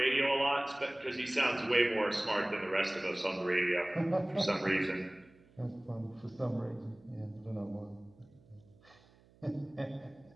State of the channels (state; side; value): noise; right; hum, 28 dB below the sound